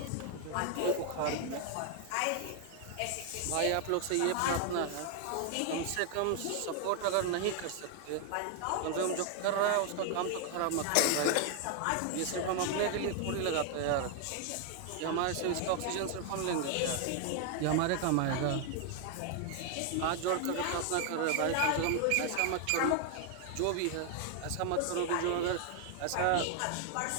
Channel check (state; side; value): different; both; correlation 0.00